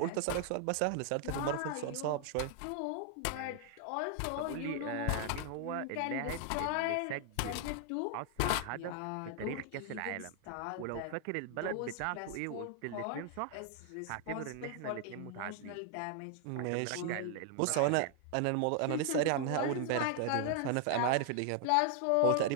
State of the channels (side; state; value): both; different; correlation 0.00